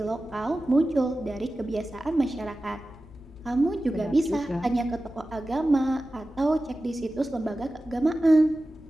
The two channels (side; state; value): both; normal; correlation 0.95